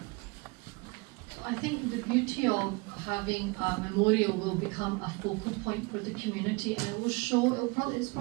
I think the beauty of how having a memorial will become a focal point for the community, and it will show, it's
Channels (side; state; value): left; quieter; 27.3 dB